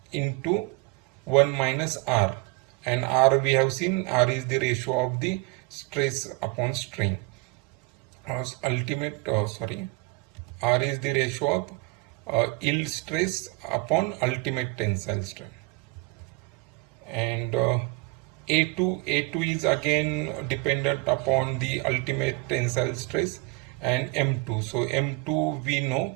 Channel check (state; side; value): quieter; left; 22.9 dB